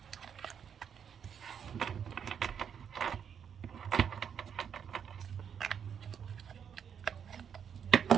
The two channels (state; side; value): quieter; left; 7.7 dB